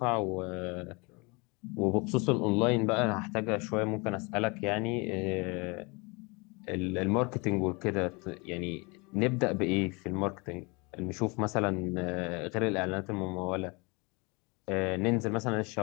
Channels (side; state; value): right; quieter; 28.3 dB